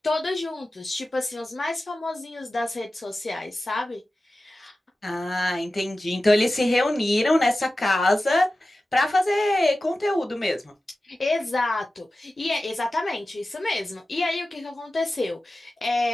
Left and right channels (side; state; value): both; normal; correlation 0.95